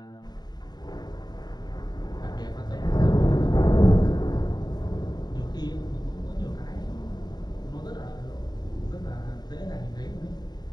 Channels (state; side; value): late; right; 0.20 ms